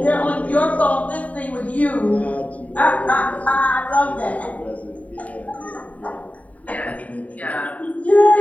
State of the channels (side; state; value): right; late; 0.070 ms